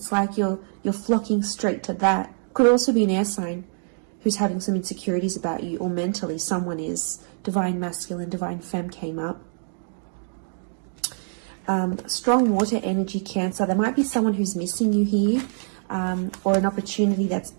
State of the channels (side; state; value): left; silent; digital silence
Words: like you're flocking straight to that. Could also be an air sign who's having some insecurities about you, or mentally someone is. Divine masculine, divine femme came up. Strong water energy, Cancer. There might be someone who's missing you here, or an opportunity that's